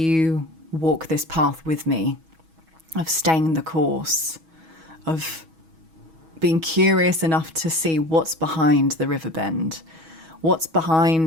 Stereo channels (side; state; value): left; late; 6.2 ms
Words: walk this path with me of staying the course, of being curious enough to see what's behind the river bend, what's